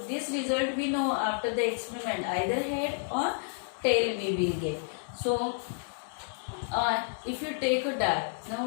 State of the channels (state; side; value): silent; right; 58 dB below the other